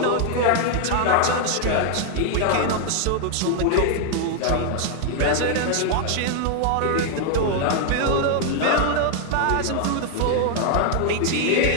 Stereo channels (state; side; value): different; both; correlation 0.00